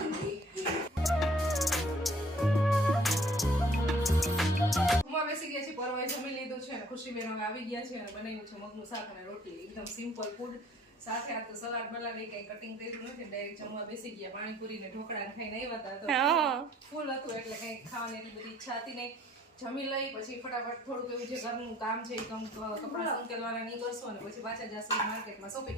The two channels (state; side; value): normal; both; correlation 0.57